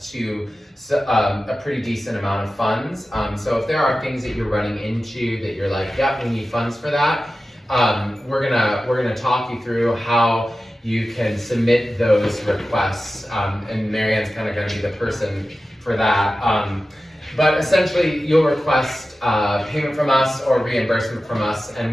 to a pretty decent amount of funds. So if there are things that you're running into that you're like, yep, we need funds for that, we're gonna talk you through how you can submit those requests, and Marianne's kind of gonna be the person for that. But essentially, you'll request payment from us or reimbursement from us,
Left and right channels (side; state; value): both; normal; correlation 0.94